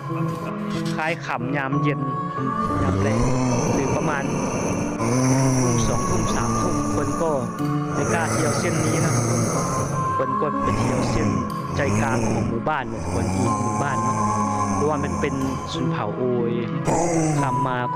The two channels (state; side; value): identical; both; correlation 1.00